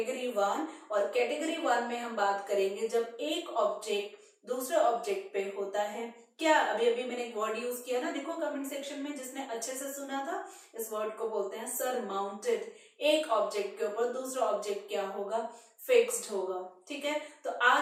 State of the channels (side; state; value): both; identical; correlation 1.00